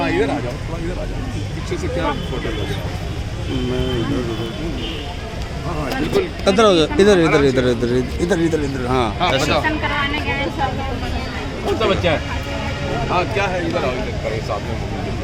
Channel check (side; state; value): both; identical; correlation 1.00